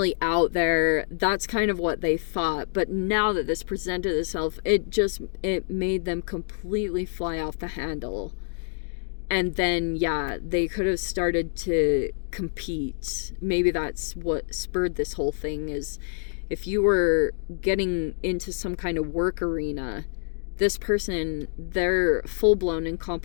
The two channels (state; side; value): silent; right; digital silence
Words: out there. That's kind of what they thought. But now that this presented itself, it made them completely fly off the handle. And then, yeah, they could have started to compete. Maybe that's what spurred this whole thing, is if you were getting into some kind of work arena, this person, they're full-blown in